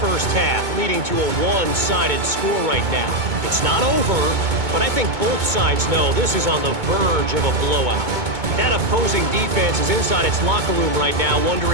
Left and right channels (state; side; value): late; left; 2.2 ms